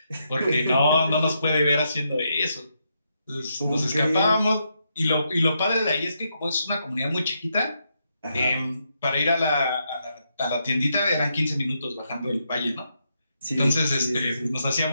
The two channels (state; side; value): inverted; both; correlation -0.80